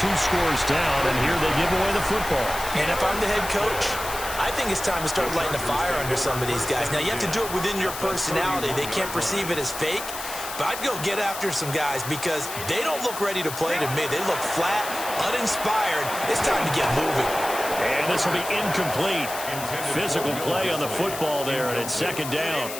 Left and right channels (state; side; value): noise; left; hiss, 9 dB below the sound